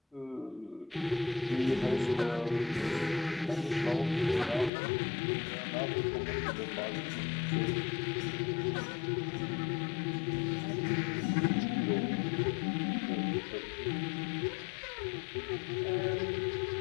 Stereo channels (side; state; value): right; drops out; at 4.7 s